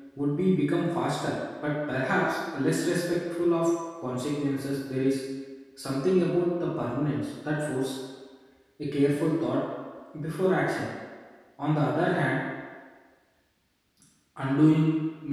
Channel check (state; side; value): identical; both; correlation 1.00